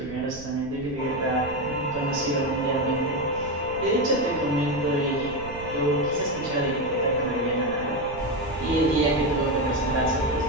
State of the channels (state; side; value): noise; right; rumble, 14 dB below the sound